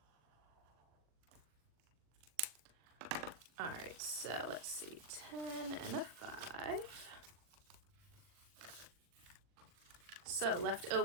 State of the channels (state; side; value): late; left; 40 ms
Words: All right, so let's see, 10 and a 5. So left